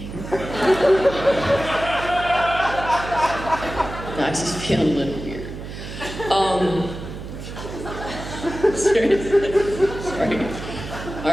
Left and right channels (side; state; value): right; noise; hum, 10 dB below the sound